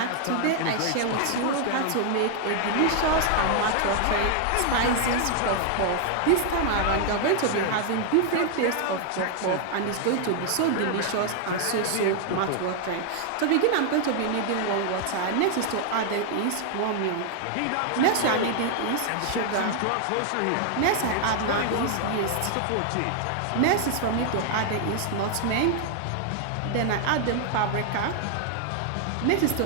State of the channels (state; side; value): different; both; correlation 0.00